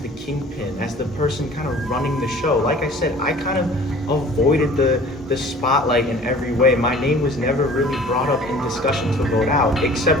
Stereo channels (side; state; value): both; normal; correlation 0.48